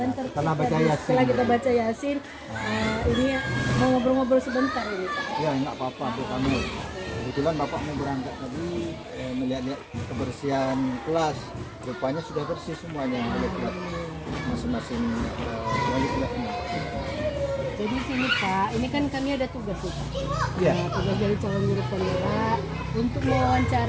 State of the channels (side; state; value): both; identical; correlation 1.00